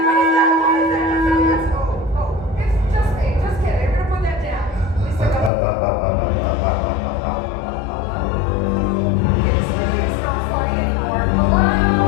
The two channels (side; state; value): right; drops out; at 5.5 s